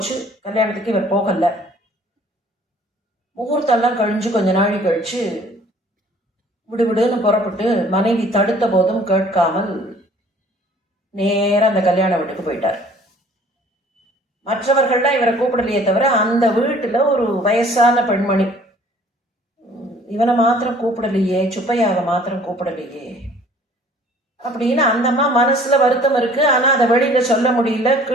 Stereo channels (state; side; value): normal; both; correlation 0.54